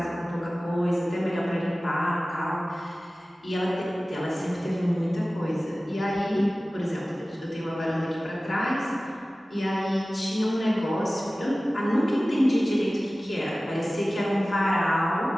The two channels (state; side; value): normal; both; correlation 0.97